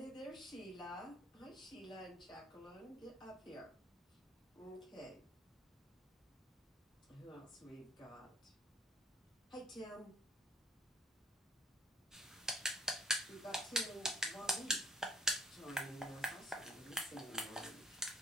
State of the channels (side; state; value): both; normal; correlation 0.58